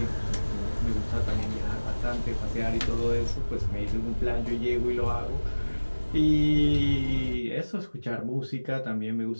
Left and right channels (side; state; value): both; inverted; correlation -1.00